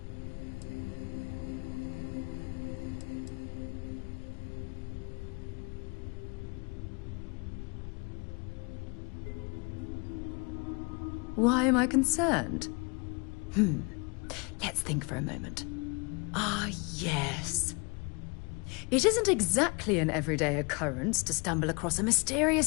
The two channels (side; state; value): right; quieter; 30.9 dB